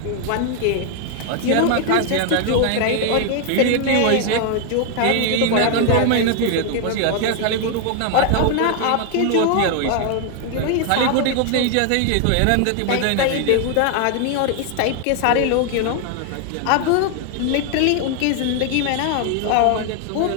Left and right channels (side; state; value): both; different; correlation 0.00